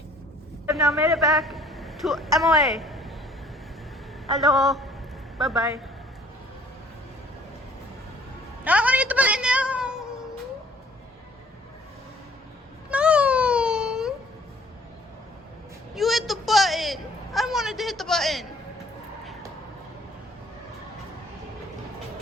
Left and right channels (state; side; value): normal; both; correlation 0.57